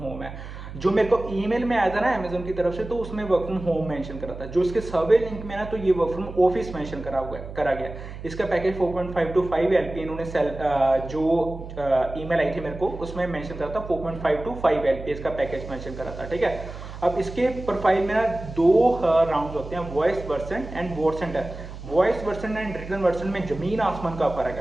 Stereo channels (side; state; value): right; noise; hum, 11 dB below the sound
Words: होम है। जो मेरे को ईमेल में आया था ना अमेजोन की तरफ से, तो उसमें वर्क फ्रॉम होम मेंशन करा था। जो इसके सर्वे लिंक में ना, तो ये वर्क फ्रॉम ऑफिस मेंशन करा गया। इसका पैकेज 4.5 to 5 LP इन्होंने जो ईमेल आई थी मेरे को उसमें मेंशन करा था 4.5 to 5 LP इसका पैकेज मेंशन करा था, ठीक है। अब इसके प्रोफाइल में ना 2 राउंड्स होते हैं, voice version and votes and test. Voice version and written version में जमीन आसमान का फर्क